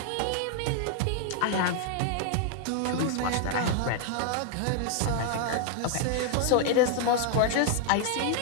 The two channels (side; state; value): both; different; correlation 0.00